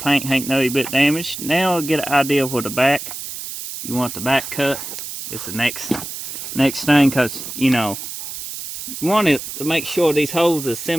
ain't no bit damaged. Now get an idea of where the back, you want the back cut. It's the next thing, because you know you want it to make sure these holes are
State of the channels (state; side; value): noise; right; hiss, 8 dB below the sound